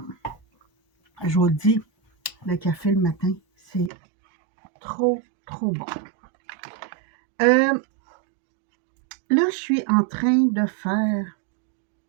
Je vous le dis, le café le matin, c'est trop bon. Là, je suis en train de faire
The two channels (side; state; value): left; drops out; at 3.9 s